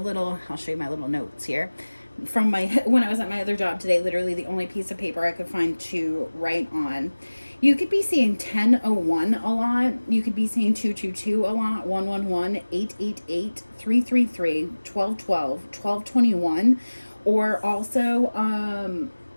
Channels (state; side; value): inverted; both; correlation -1.00